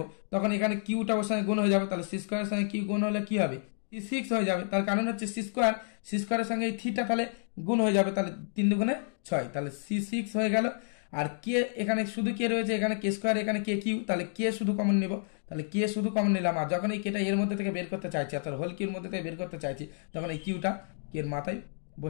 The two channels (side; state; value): right; silent; digital silence